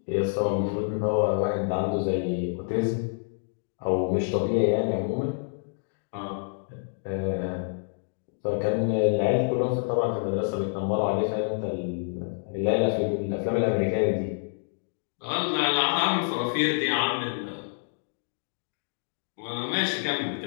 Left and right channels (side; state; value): right; silent; digital silence